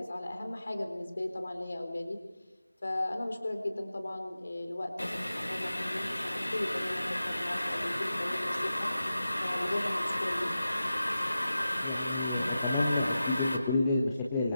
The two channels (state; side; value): inverted; both; correlation -0.93